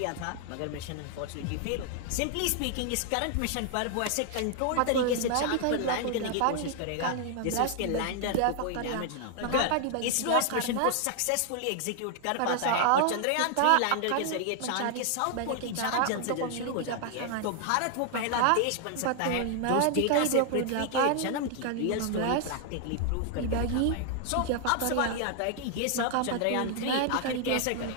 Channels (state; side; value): different; both; correlation 0.00